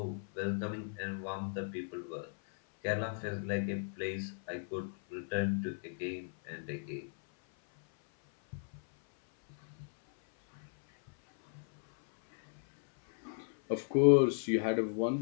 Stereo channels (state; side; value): silent; right; 54 dB below the other